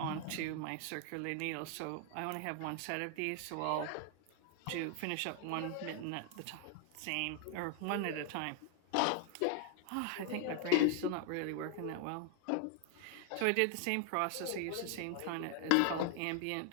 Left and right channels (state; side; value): different; both; correlation 0.00